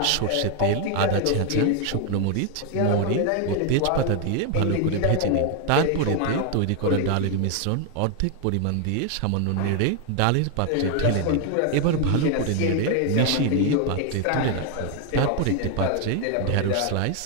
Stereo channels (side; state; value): both; different; correlation 0.01